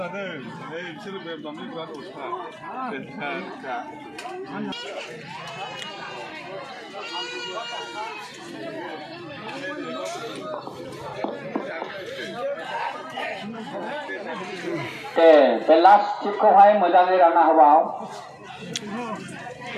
नै बिसोरो बेदरनि बिराद अथा दे बे लास्ट टिपखौहाय मोजाङै रानना होबाव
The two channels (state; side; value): identical; both; correlation 1.00